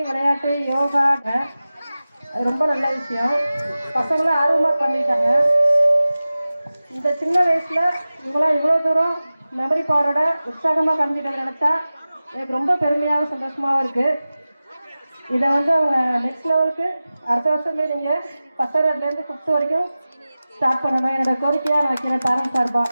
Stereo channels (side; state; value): both; inverted; correlation -0.96